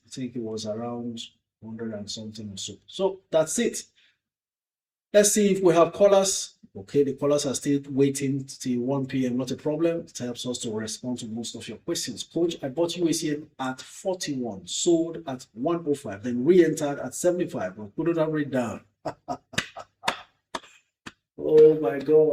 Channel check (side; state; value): both; identical; correlation 1.00